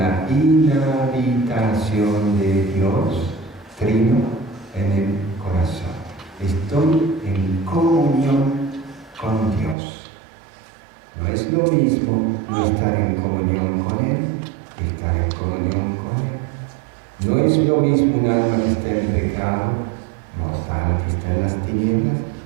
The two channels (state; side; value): drops out; left; at 9.8 s